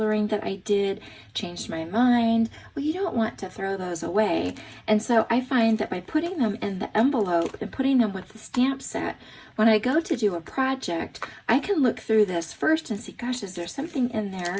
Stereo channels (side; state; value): both; identical; correlation 1.00